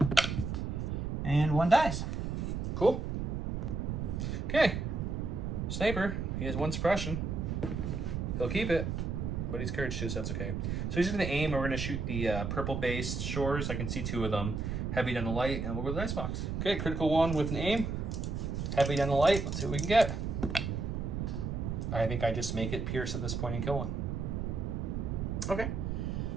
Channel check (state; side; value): noise; right; rumble, 2 dB below the sound